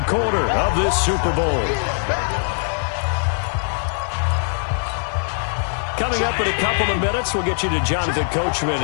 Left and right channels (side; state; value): right; silent; 56 dB below the other